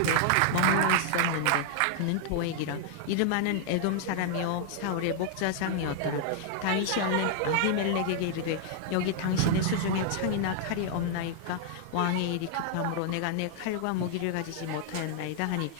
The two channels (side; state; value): both; different; correlation -0.01